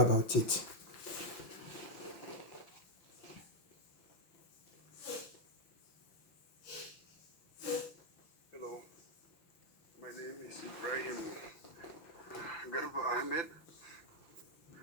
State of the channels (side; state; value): right; late; 5.9 ms